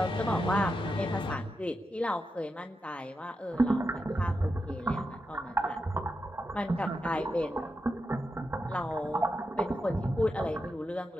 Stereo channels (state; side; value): normal; both; correlation 0.87